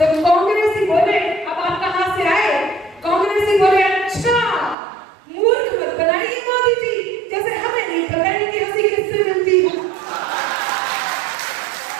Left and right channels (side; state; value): left; drops out; at 4.8 s